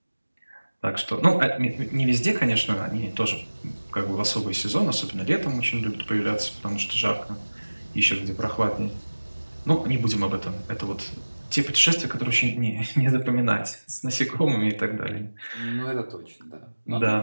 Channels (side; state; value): both; inverted; correlation -1.00